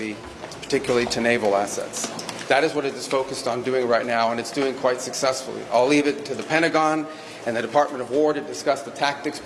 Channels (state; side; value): identical; both; correlation 1.00